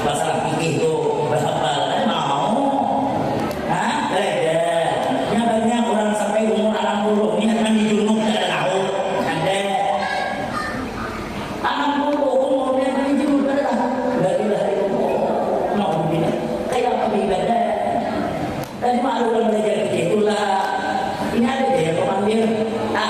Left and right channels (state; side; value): identical; both; correlation 1.00